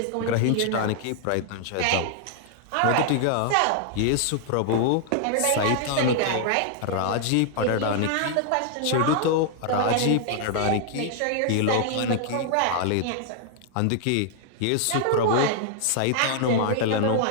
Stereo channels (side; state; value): both; different; correlation 0.00